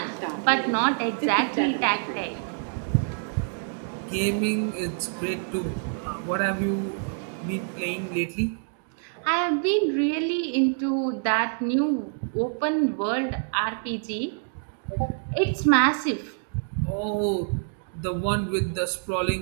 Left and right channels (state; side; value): silent; left; digital silence